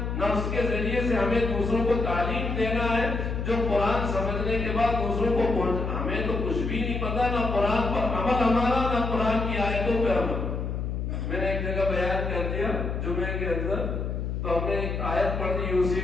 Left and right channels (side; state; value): left; noise; hum, 3 dB below the sound